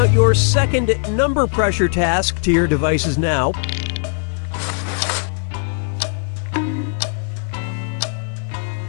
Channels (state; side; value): silent; right; 57 dB below the other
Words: your second number pressure task to your devices now.